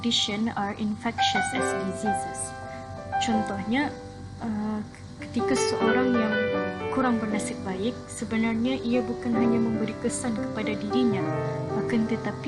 are infectious as diseases. Contohnya, ketika seorang yang kurang bernasib baik, sebenarnya ia bukan hanya memberi kesan kepada dirinya, akan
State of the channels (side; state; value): both; identical; correlation 1.00